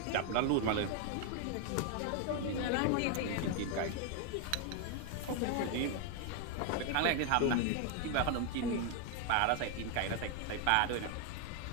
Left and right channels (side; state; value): both; different; correlation 0.01